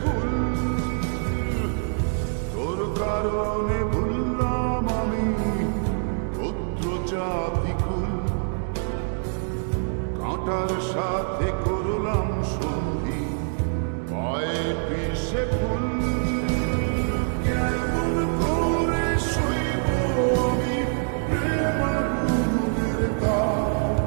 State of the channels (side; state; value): left; silent; digital silence